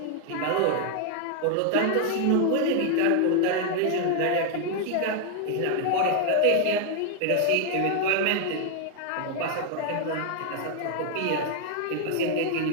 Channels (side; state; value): both; different; correlation 0.00